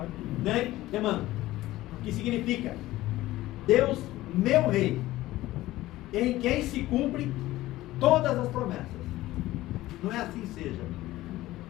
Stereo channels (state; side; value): quieter; right; 16.6 dB